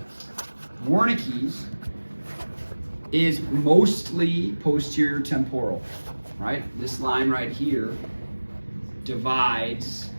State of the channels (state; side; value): inverted; both; correlation -1.00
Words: Wernicke's is mostly posterior temporal, right? This line right here divides